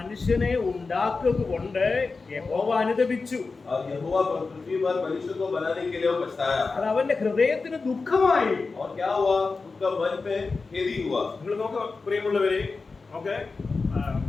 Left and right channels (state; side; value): quieter; right; 4.2 dB